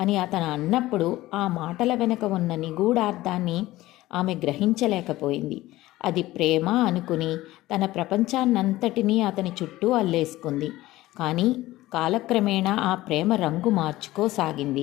అతను అన్నప్పుడు ఆ మాటల వెనుక ఉన్న నిగూఢార్థాన్ని ఆమె గ్రహించలేకపోయింది. అది ప్రేమ అనుకుని తన ప్రపంచాన్నంతటినీ అతని చుట్టూ అల్లేసుకుంది. కానీ కాలక్రమేణా ఆ ప్రేమ రంగు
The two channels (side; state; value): right; quieter; 17.1 dB